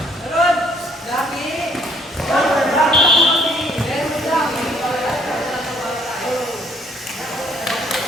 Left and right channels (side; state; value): both; normal; correlation 0.64